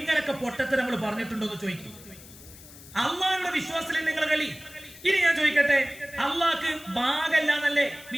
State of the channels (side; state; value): left; noise; hiss, 19 dB below the sound